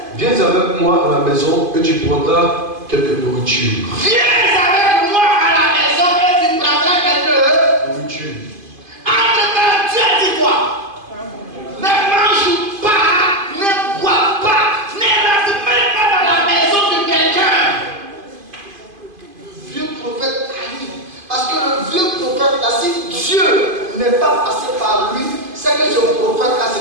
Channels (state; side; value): late; left; 2.5 ms